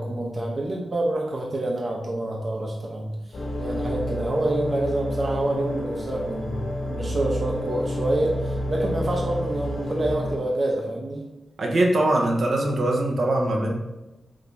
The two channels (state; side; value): normal; both; correlation 0.91